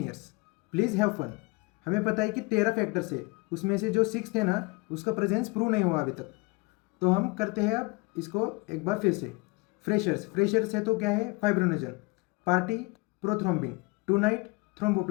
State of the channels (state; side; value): quieter; right; 26.9 dB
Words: please have fun. हमें पता है कि 13 फैक्टर्स है, उसमें से जो 6 थे ना, उसका प्रेजेंस प्रूव नहीं हुआ अभी तक। तो हम करते हैं अब इसको एक बार फिर से। फ्रेशर्स है तो क्या है? Fibrinogen, party prothrombin, tonight